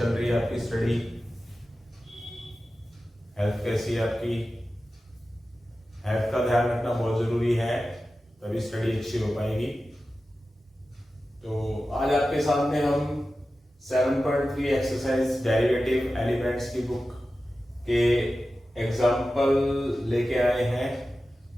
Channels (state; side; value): normal; both; correlation 0.94